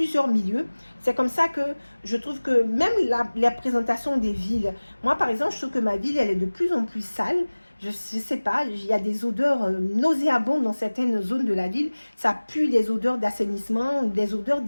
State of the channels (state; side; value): inverted; both; correlation -1.00